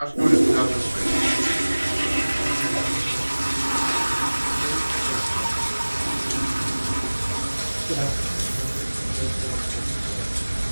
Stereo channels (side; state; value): both; inverted; correlation -1.00